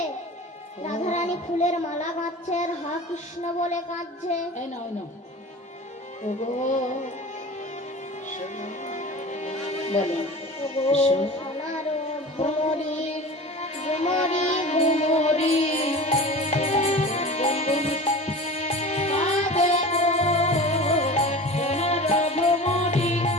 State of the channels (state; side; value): normal; both; correlation 0.35